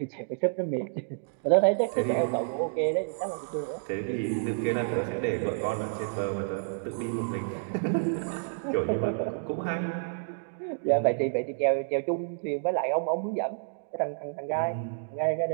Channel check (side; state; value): left; silent; digital silence